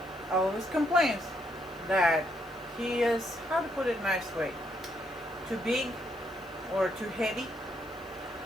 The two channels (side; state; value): left; noise; hiss, 26 dB below the sound